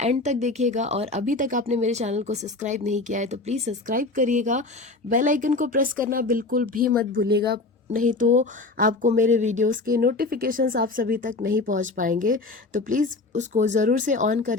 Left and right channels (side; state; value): right; quieter; 3.4 dB